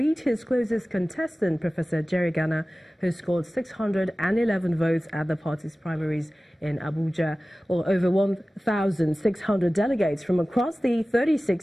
his closest contestant, Professor Jerry Gana, who scored 611 votes at the party's primaries in Abuja. Well, over 1,600 delegates from across the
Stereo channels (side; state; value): both; normal; correlation 0.97